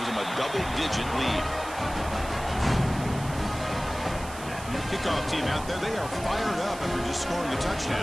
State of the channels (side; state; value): right; noise; hiss, 15 dB below the sound